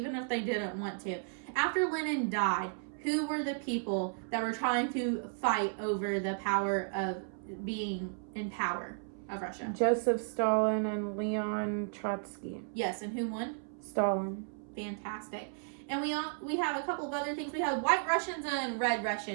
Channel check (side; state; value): left; silent; 55 dB below the other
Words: if they didn't want to. After Lenin died, who were the people that were trying to fight over the power of being in power of Russia? Joseph Stalin and Leon Trotsky. Yes, and who won? Stalin. Fantastic. And we have a couple of other things. We have white Russians and red